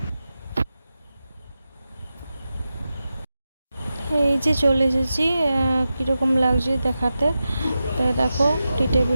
এই যে চলে এসেছি, কীরকম লাগছে দেখাতে। তাই দেখো টি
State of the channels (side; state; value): both; inverted; correlation -0.92